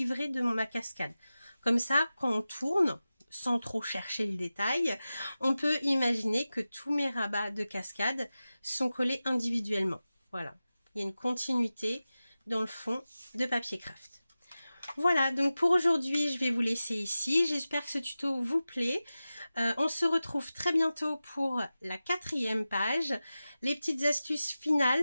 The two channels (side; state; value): both; inverted; correlation -0.95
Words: de ma cascade. Comme ça, quand on tourne, sans trop chercher le détail, on peut imaginer que tous mes rabats de cascade sont collés individuellement. Voilà. Il y a une continuité dans le fond de papier craft. Voilà, donc pour aujourd'hui, je vais vous laisser ici. J'espère que ce tuto vous plaît. On se retrouve très bientôt pour la 4e page, les petites astuces